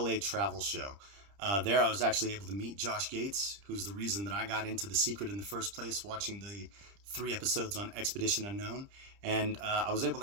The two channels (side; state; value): left; late; 30 ms